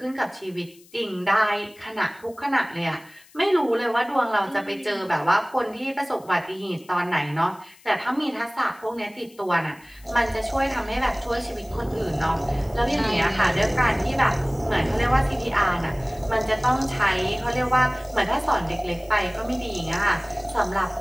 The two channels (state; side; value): noise; left; hiss, 26 dB below the sound